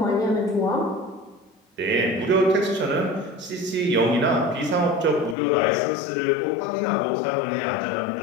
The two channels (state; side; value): drops out; right; at 5.4 s